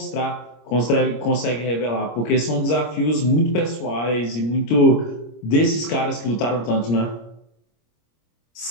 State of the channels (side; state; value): right; late; 26 ms